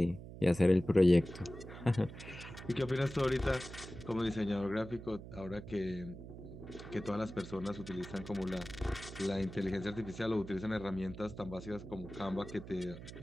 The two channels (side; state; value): right; noise; hum, 13 dB below the sound